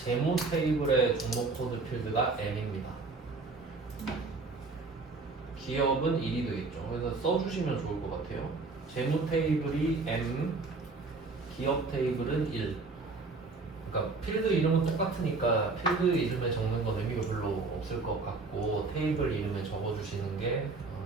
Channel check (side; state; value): left; quieter; 3.9 dB